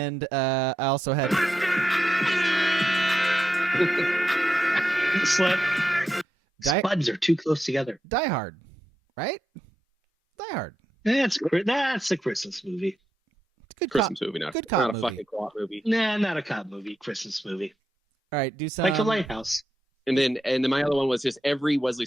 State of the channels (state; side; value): normal; both; correlation 0.85